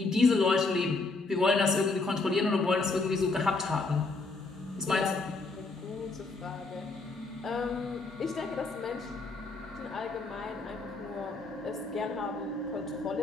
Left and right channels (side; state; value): right; quieter; 3.6 dB